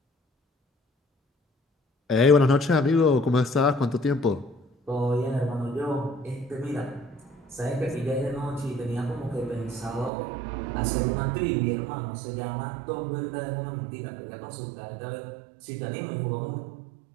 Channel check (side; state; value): left; drops out; at 10.1 s